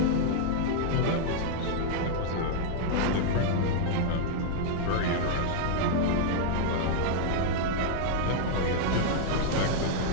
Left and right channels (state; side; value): different; both; correlation -0.01